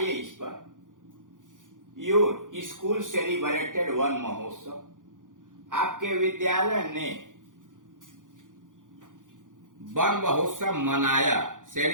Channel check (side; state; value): left; late; 0.88 ms